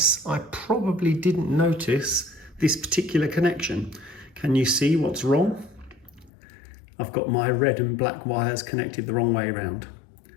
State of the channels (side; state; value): right; drops out; at 6.3 s